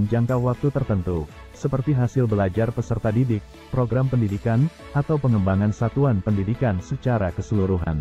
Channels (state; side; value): identical; both; correlation 1.00